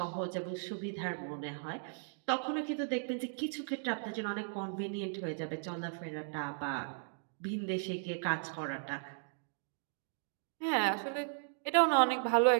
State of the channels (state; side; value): silent; left; digital silence